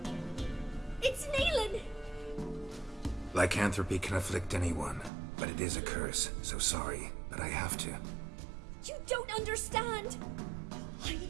It's Neelan! Lycanthropy can afflict anyone, but it is a curse, so sorry, but I have to. You don't understand! I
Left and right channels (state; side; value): drops out; left; at 5.1 s